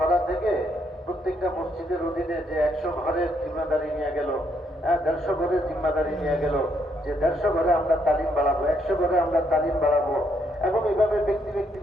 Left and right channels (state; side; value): normal; both; correlation 0.74